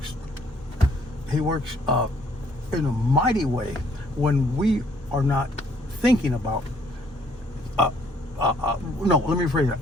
he works in a mighty way when we are not thinking about, no, let me rephrase that.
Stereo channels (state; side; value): normal; both; correlation 0.64